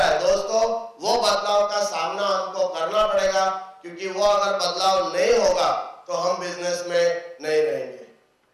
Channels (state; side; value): identical; both; correlation 1.00